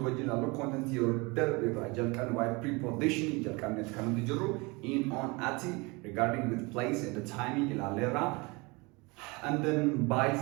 original content here. Why preposition in, on, at, regarding with place and the timing in and then by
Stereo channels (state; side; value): quieter; left; 26.6 dB